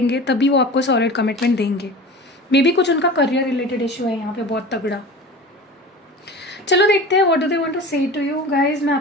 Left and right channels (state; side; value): normal; both; correlation 0.35